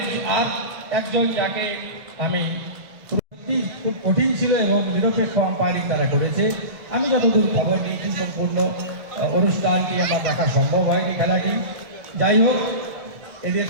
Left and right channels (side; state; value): left; late; 1.6 ms